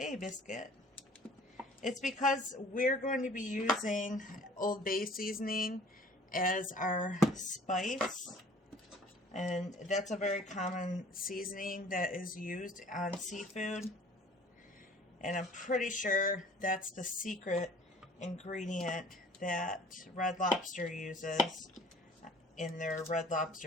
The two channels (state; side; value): normal; both; correlation 0.51